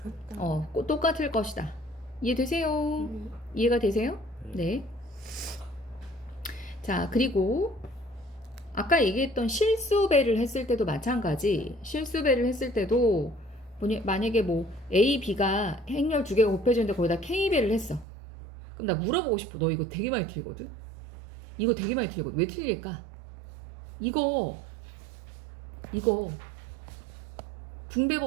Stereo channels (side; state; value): left; drops out; at 18.1 s